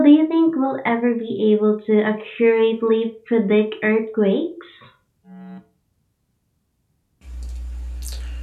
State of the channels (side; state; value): both; identical; correlation 1.00